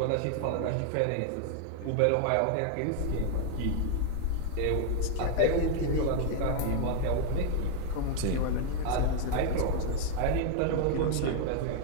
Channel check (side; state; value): both; different; correlation 0.00